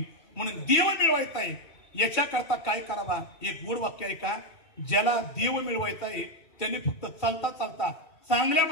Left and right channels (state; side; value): late; right; 2.3 ms